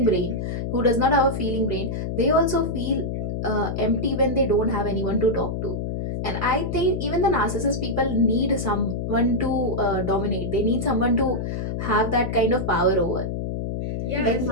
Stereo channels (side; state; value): left; noise; hum, 3 dB below the sound